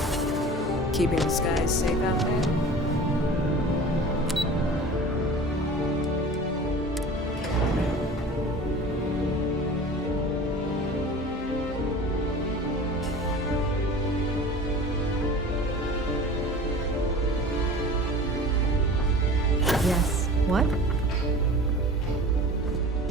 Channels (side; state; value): both; normal; correlation 0.39